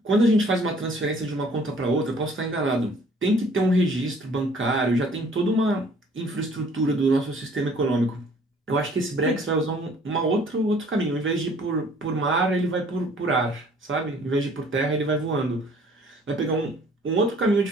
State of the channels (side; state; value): both; normal; correlation 0.56